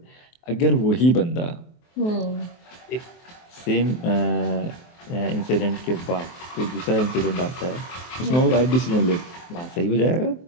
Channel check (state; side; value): late; right; 23 ms